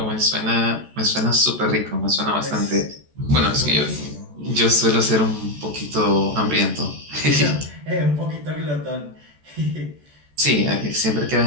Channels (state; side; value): late; left; 14 ms